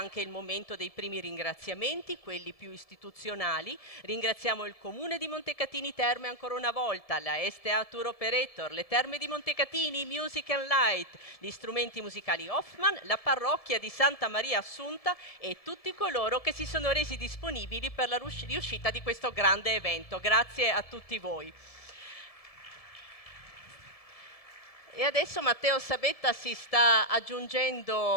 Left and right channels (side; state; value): right; late; 1.7 ms